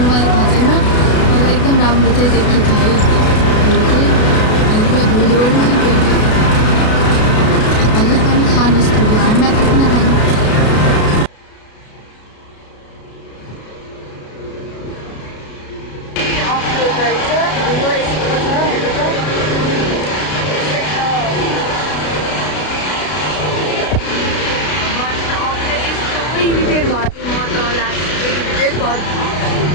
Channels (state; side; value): late; right; 33 ms